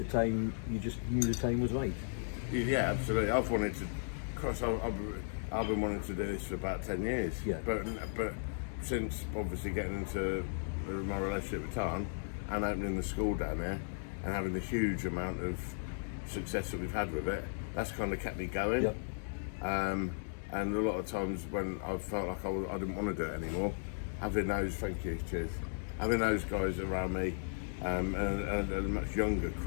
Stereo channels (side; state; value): right; silent; digital silence